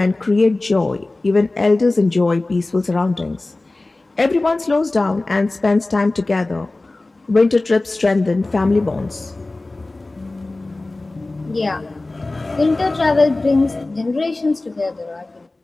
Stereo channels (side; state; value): right; quieter; 3.0 dB